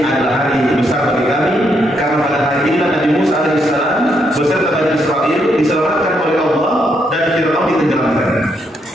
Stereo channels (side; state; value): both; normal; correlation 0.76